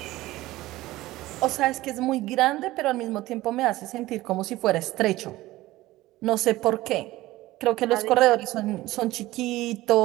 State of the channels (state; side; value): quieter; left; 17.5 dB